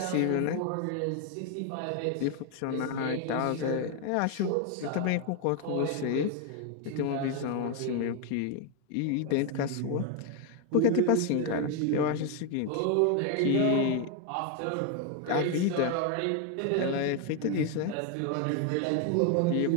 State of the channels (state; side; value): different; both; correlation 0.01